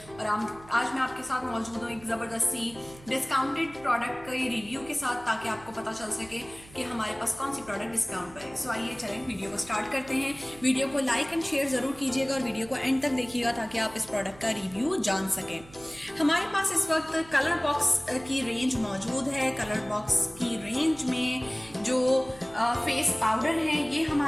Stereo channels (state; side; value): noise; right; hum, 21 dB below the sound